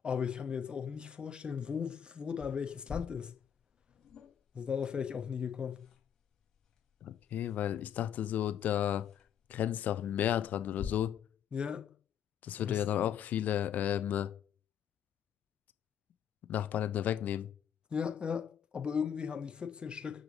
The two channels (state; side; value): quieter; right; 8.8 dB